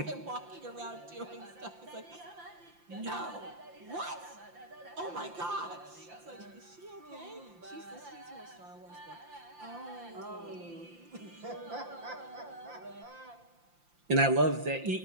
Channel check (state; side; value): late; left; 5.8 ms